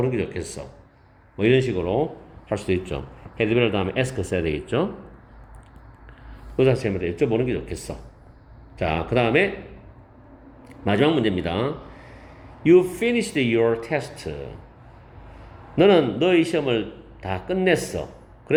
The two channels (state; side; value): identical; both; correlation 1.00